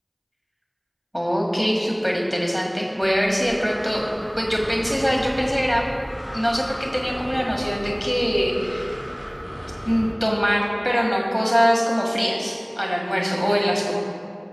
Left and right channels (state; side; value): identical; both; correlation 1.00